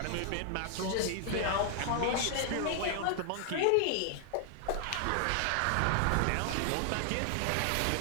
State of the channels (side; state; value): both; different; correlation 0.00